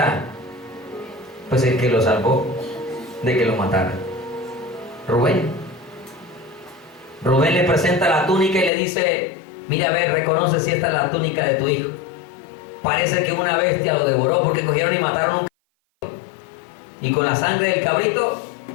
Pues el que lo salvó de que lo mataran. Rubén. Rubén le presenta la túnica y le dice: mira, a ver, reconoce si esta es la túnica de tu hijo. Parece que una bestia lo devoró porque cogieron y mataron un cabrito. Y con la sangre del cabrito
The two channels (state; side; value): drops out; right; at 8.7 s